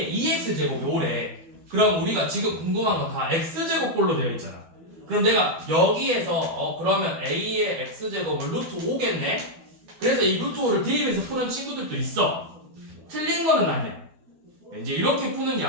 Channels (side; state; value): left; late; 12 ms